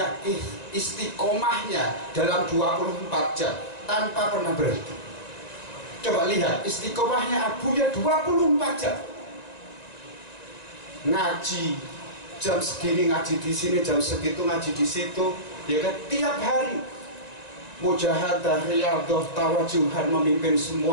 istiqomahnya dalam 24 jam tanpa pernah berhenti. Coba lihat istiqomahnya Abuya 24 jam. Ngaji jam segini, ngaji di sini, jam segitu ngaji di situ, ya kan, tiap hari. Mujahadah, riyadhah, tawajuhan, memimpin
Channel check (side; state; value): right; late; 1.9 ms